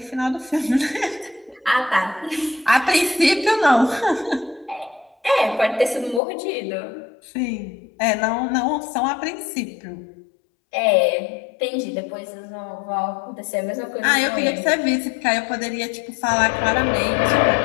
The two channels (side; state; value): right; drops out; at 6.2 s